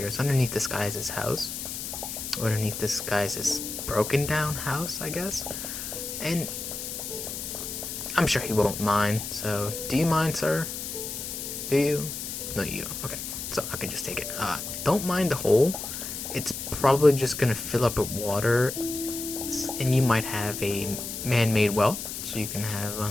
It's underneath this guy's house. Underneath this guy's broken down house, I guess. And I'm sure he won't mind. So, do you mind, sir? Do you? No, you don't. Okay, so I can just take it. Don't mind the hole. It's probably just gonna fill up with water, and you might have a man-made well, so you can have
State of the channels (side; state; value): left; noise; hiss, 6 dB below the sound